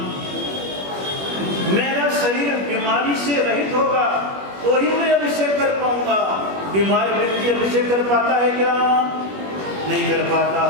मेरा शरीर बीमारी से रहित होगा तो ही मैं अभिषेक कर पाऊंगा। बीमार व्यक्ति अभिषेक कर पाता है क्या? नहीं कर पाता।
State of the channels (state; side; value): late; left; 21 ms